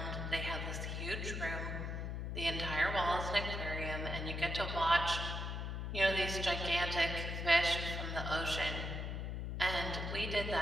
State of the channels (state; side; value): noise; left; hum, 3 dB below the sound